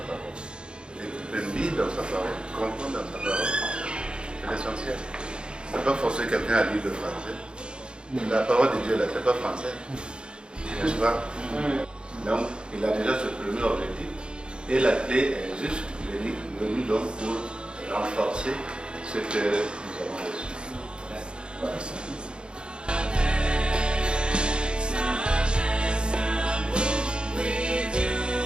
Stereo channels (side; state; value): left; late; 0.052 ms